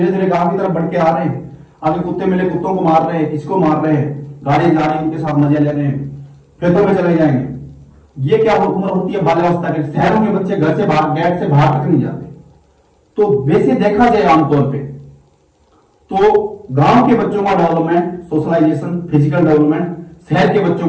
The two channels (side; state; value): both; identical; correlation 1.00